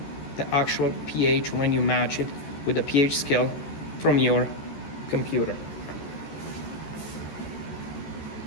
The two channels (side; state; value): right; late; 13 ms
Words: the actual pH when you match it with the pH scale from your computer.